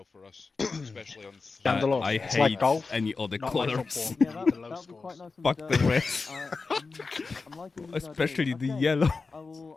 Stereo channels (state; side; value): quieter; right; 4.3 dB